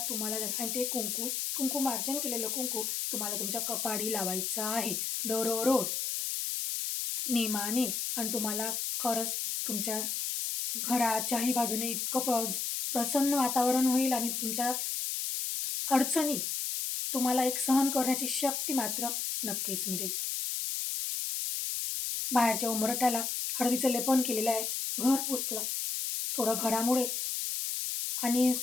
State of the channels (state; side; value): noise; left; hiss, 1 dB below the sound